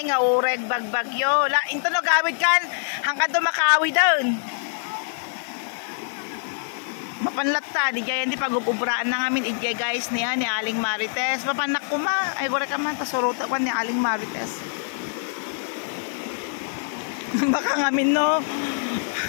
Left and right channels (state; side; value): silent; right; 62 dB below the other